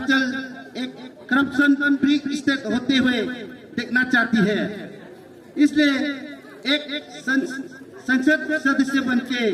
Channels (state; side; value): identical; both; correlation 1.00